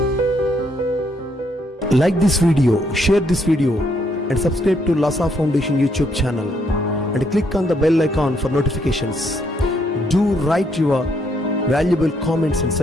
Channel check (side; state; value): both; normal; correlation 0.72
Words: Like this video, share this video and subscribe to Lhasa Foundation YouTube channel and click on the bell icon for notifications. Do write your valuable comments and